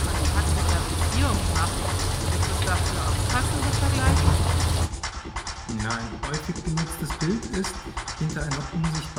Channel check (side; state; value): both; identical; correlation 1.00